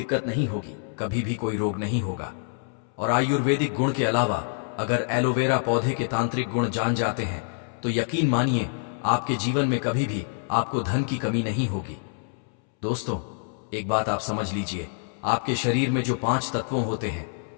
नहीं होगी, कभी भी कोई रोग नहीं होगा। और आयुर्वेदिक गुण के अलावा अगर एलोवेरा पौधे के तांत्रिक गुण जान जाते हैं तो यकीन मानिए आपके जीवन में कभी भी आपको धन की कमी नहीं होगी। दोस्तों, एक बात आप समझ लीजिए, आपके शरीर में जो 5 तत्वों होते हैं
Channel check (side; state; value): right; silent; 61 dB below the other